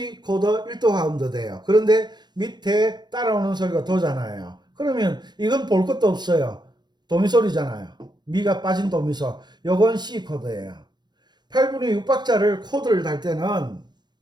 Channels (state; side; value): late; left; 0.21 ms